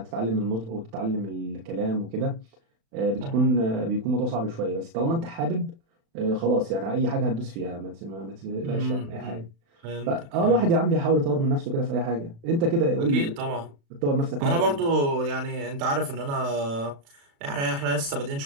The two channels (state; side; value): late; left; 36 ms